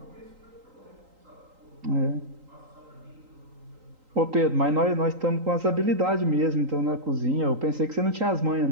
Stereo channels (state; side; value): late; left; 3.8 ms